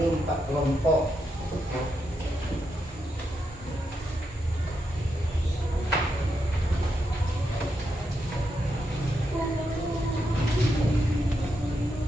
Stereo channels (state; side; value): normal; both; correlation 0.83